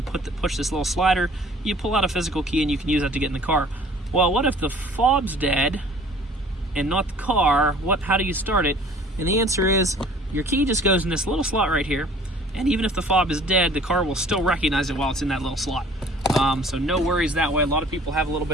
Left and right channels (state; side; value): normal; both; correlation 0.51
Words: push this little slider, you pull out a physical key and you can use that to get in the car. Well, what if the fob's dead and not the car? How do you start it? And the answer is, your key just goes in this little slot right here, and even if the fob is dead, the car will still recognize it while it's in that little slot. So no worries that way. A lot of people have a little